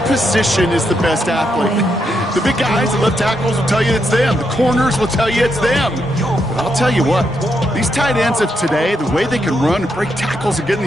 position is the best athlete. The big guys, the left tackles will tell you it's them. The corners will tell you it's them. But I'll tell you what, these tight ends of today, the way they can run and break tackles and get in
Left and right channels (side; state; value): both; normal; correlation 0.81